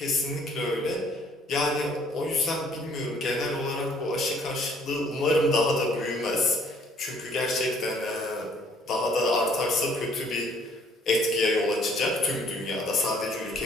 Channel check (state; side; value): normal; both; correlation 0.61